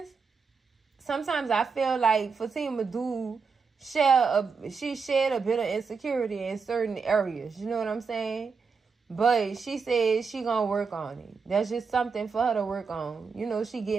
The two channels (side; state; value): left; quieter; 5.2 dB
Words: sometimes I feel like Fatima she shared a bit of insecurity in certain areas. You know what I'm saying? But she said she gonna work on it. That's just something for her to work on. She